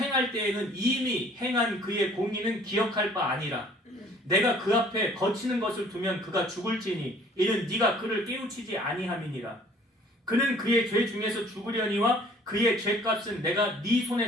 때에는 이미 행한 그의 공의는 기억할 바 아니라 내가 그 앞에 거치는 것을 두면 그가 죽을지니 이는 네가 그를 깨우치지 아니함이니라. 그는 그의 죄 중에서 죽으려니와 그의 죄값은 내가 네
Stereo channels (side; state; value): both; normal; correlation 0.54